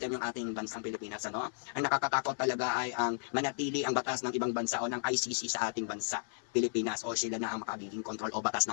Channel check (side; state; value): right; silent; 55 dB below the other